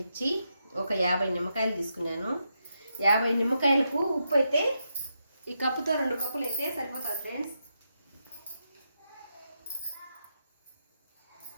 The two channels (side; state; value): both; inverted; correlation -0.82